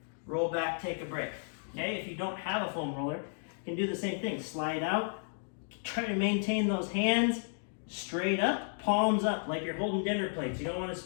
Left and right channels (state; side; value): silent; right; digital silence